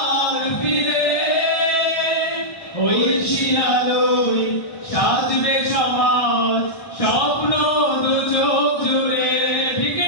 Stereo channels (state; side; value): late; right; 1.2 ms